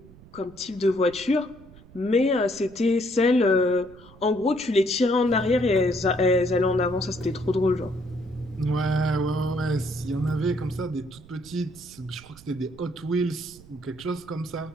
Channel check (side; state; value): right; noise; rumble, 22 dB below the sound